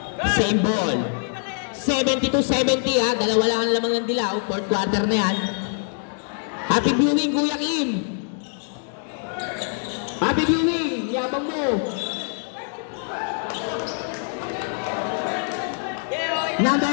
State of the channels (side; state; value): right; silent; 63 dB below the other